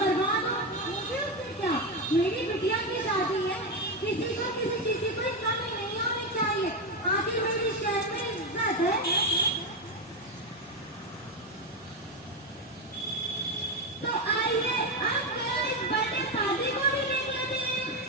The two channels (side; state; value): both; normal; correlation 0.11